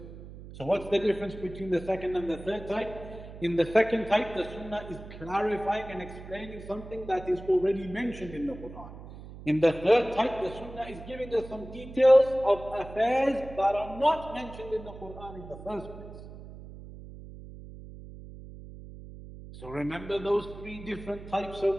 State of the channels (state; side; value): noise; right; hum, 14 dB below the sound